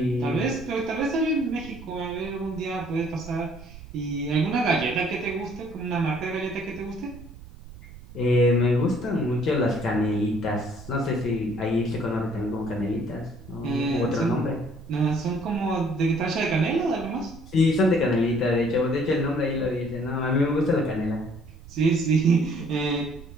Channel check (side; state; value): right; noise; rumble, 17 dB below the sound